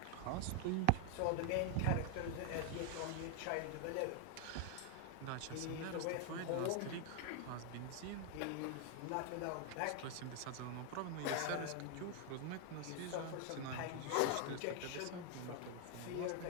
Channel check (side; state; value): both; different; correlation 0.00